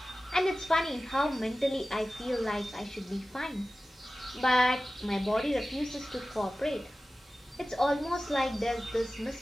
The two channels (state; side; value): normal; both; correlation 0.96